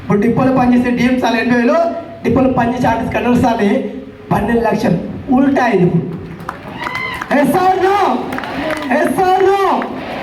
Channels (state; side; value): identical; both; correlation 1.00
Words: ఇప్పుడు డిపోలో పనిచేసే డిఎం సార్లు 80,000, డిపోలో పనిచేసే ఆర్టిస్ట్ కండక్టర్ సార్లు 12,00,000. ఉల్టా ఇది. ఎస్ఆర్నో.